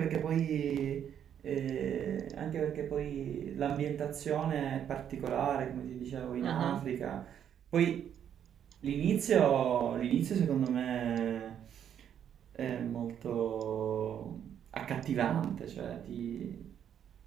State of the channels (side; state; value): left; quieter; 9.2 dB